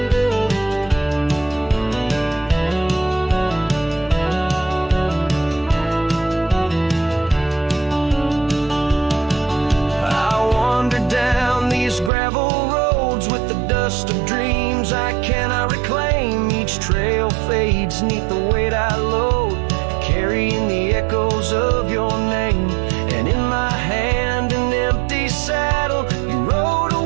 Gravel roads with the dust of dreams I cannot reclaim. Each trail fades neath the weight I load, carrying the echoes of your name. And in my hand an empty saddle, you rode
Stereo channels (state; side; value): drops out; left; at 12.1 s